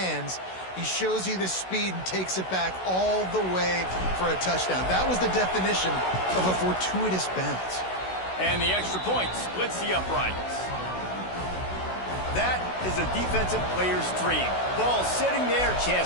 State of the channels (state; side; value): late; right; 16 ms